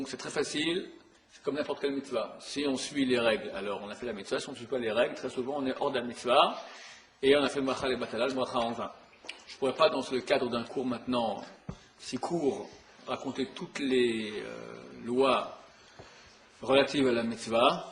c'est très facile, c'est comme n'importe quelle mitzvah. Si on suit les règles, alors on a fait la mitzvah, si on ne suit pas les règles, très souvent on est hors de la mitzvah, et on a fait le bachal et batal, le bracha en vin. Je ne pourrais pas, dans le cadre d'un cours maintenant si court, raconter toutes les lois relatives à la mitzvah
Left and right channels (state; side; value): identical; both; correlation 1.00